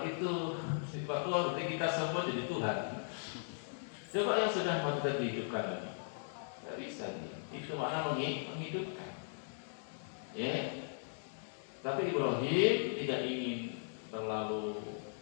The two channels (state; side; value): silent; right; digital silence